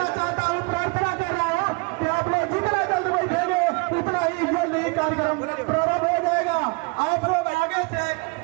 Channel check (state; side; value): quieter; left; 28.9 dB